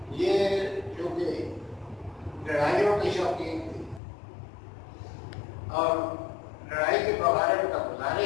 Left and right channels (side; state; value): right; drops out; at 4.0 s